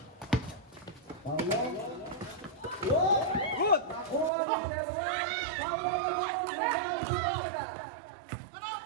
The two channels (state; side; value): drops out; left; at 4.3 s